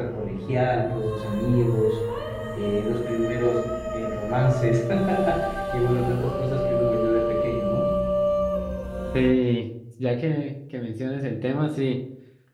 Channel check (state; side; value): identical; both; correlation 1.00